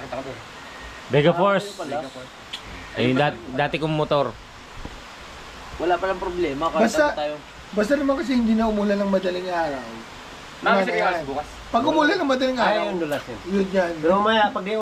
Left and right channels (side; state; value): both; identical; correlation 1.00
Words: ko doon. Vega Force. Ayun, dati kong motor. Wala palang problema. Basta naman kasi hindi na umulan ng madaling araw. Nakasirikas bukas. Pag umulan ng madaling araw, yun yan. Pero mamaya, pag di